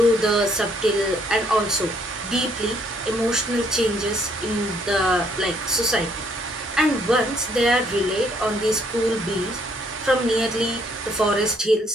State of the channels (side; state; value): both; normal; correlation 0.68